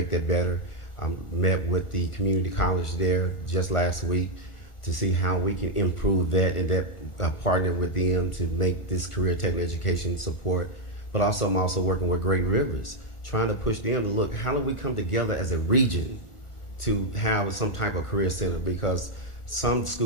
that better. I met with the community college there just last week to see how we can improve that and partner with them to make this career technical education support. But also, I'm also working with Great Rivers, trying to push them to look, how do we come together as a region to have some type of career center, because some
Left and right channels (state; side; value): late; right; 1.4 ms